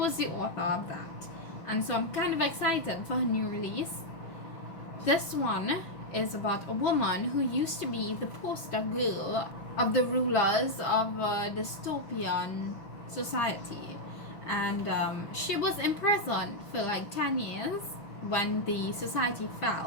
the author of that, and so I'm kind of excited for her new release. This one is about a woman who used to be the poster girl of the rulers of a dystopian society, and she was imprisoned for like 10 years when the society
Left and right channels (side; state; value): right; late; 6.1 ms